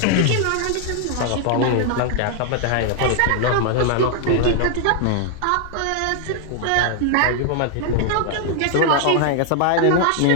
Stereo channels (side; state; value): both; different; correlation 0.00